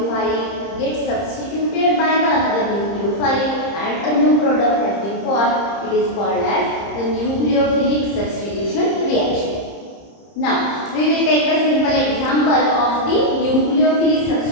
gets substituted by the another nucleophile and a new product has been formed. It is called as the nucleophilic substitution reaction. Now we will take the simple example of the nucleophilic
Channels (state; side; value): late; right; 30 ms